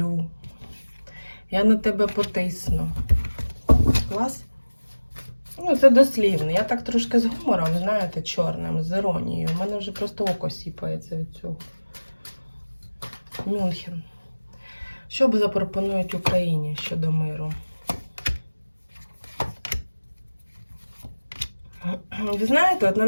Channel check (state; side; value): inverted; both; correlation -1.00